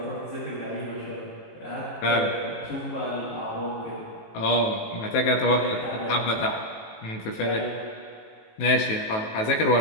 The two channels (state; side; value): late; right; 18 ms